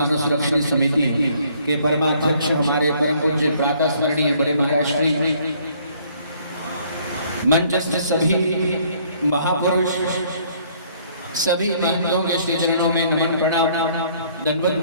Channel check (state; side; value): inverted; both; correlation -0.62